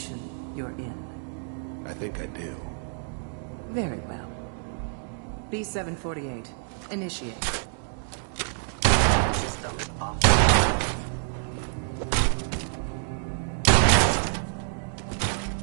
you're in. I think I do. Very well. B-748, initiate. System off.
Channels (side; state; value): left; silent; 60 dB below the other